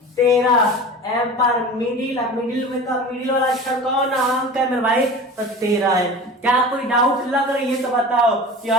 13। एम फॉर मिडिल, मिडिल में का मिडिल वाला अक्षर कौन अंक है मेरे भाई, तो 13 है। क्या कोई डाउट लग रही है तो बताओ कि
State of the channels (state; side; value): normal; both; correlation 0.35